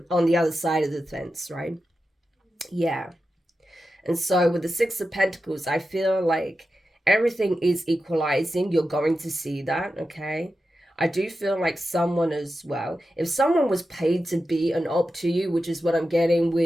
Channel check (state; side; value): normal; both; correlation 0.91